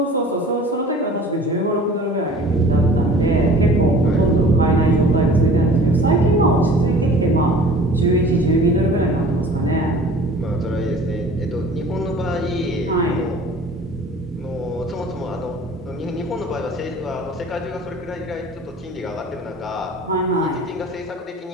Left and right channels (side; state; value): both; normal; correlation 0.45